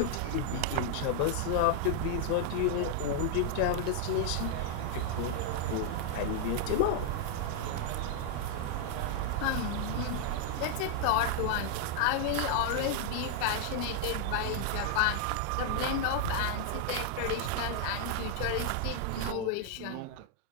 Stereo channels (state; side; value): different; both; correlation 0.00